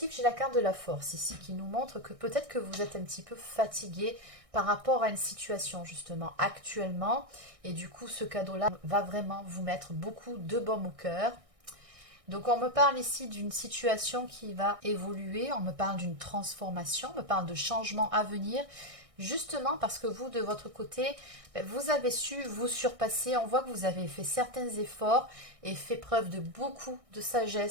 j'ai la carte de la force ici qui nous montre que peut-être que vous êtes un petit peu fatigué par rapport à une situation justement actuellement. Et du coup, ce cadeau-là va vraiment vous mettre beaucoup de baume au cœur. Donc on me parle ici d'une situation qui va évoluer, on me parle d'une transformation, on me parle de changements à venir, justement parce que vous, de votre côté, vous avez su vous surpasser. On voit que vous avez fait certains efforts et fait preuve de beaucoup de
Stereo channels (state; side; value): late; left; 1.6 ms